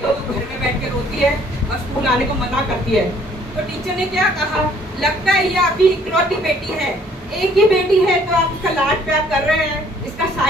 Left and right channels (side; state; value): both; normal; correlation 0.60